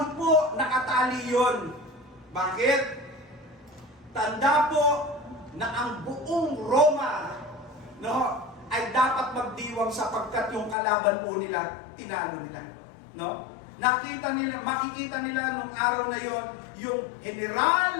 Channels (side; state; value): right; drops out; at 10.8 s